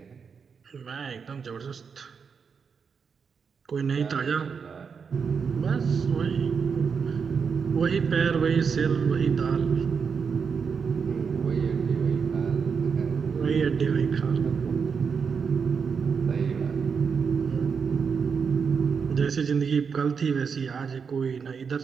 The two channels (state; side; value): quieter; left; 6.0 dB